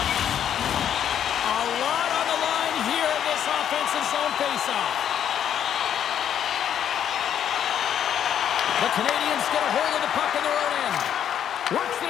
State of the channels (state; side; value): quieter; right; 9.5 dB